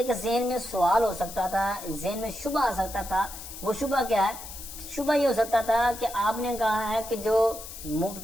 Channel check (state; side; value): noise; left; hiss, 12 dB below the sound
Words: ذہن میں سوال ہو سکتا تھا، ذہن میں شبہ آ سکتا تھا. وہ شبہ کیا ہے؟ شبہ یہ ہو سکتا تھا کہ آپ نے کہا ہے کہ جو